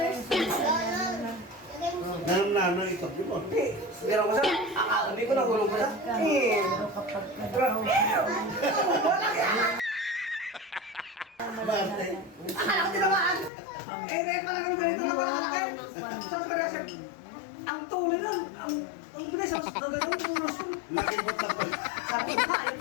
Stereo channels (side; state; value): right; drops out; at 13.5 s